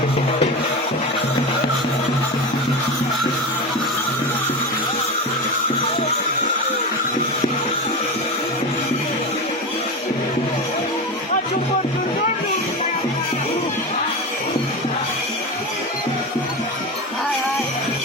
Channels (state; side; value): normal; both; correlation 0.22